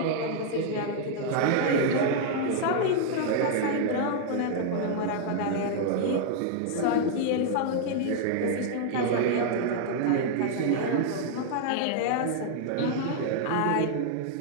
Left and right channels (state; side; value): different; both; correlation -0.01